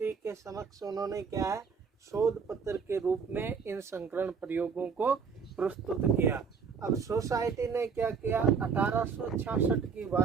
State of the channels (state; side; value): quieter; left; 5.8 dB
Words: के समक्ष उन्होंने क्या है, शोध पत्र के रूप में इन संकरण प्रयोगों को प्रस्तुत किया। अब सोसाइटी ने क्या किया, 1866 की